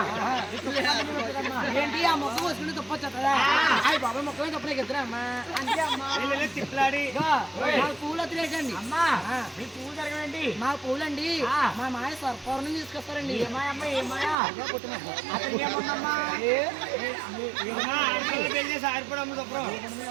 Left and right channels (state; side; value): drops out; left; at 14.4 s